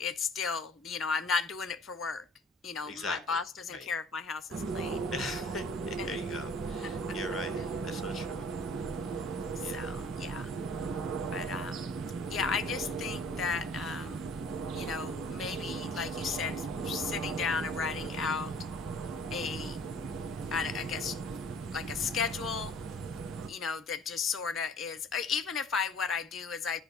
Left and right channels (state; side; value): normal; both; correlation 0.52